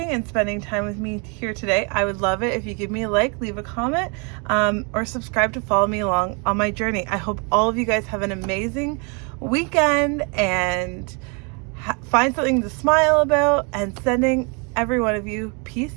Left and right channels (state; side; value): quieter; left; 34.3 dB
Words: and spending time with me here today. I would love it if you give me a like, leave a comment, or subscribe to follow me along on my journey. I hope all of you guys have an amazing weekend and find something to smile about, and sending every one of you peace